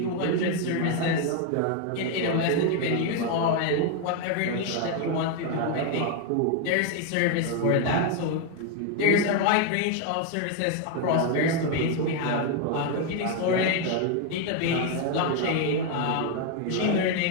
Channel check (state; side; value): different; both; correlation 0.01